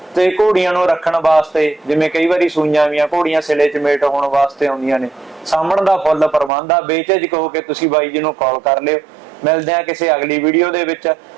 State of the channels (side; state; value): left; drops out; at 6.5 s